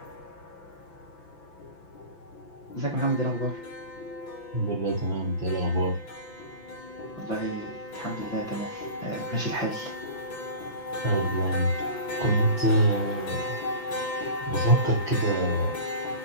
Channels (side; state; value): right; late; 6.0 ms